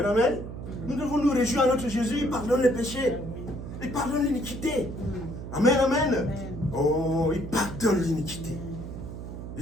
amen. Nous devons nous réjouir à notre Jésus. Il pardonne les péchés. Il pardonne l'iniquité. Amen, amen. Oh, il pardonne l'iniquité.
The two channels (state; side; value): noise; right; hum, 9 dB below the sound